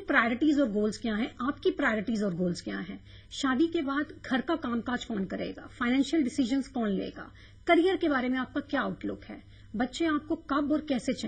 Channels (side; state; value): both; identical; correlation 1.00